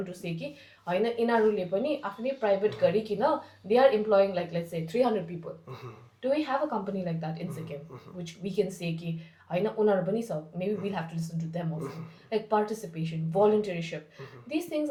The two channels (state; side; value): identical; both; correlation 1.00